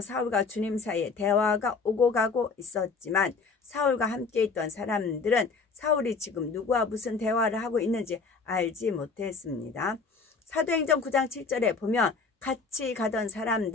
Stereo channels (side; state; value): right; quieter; 4.7 dB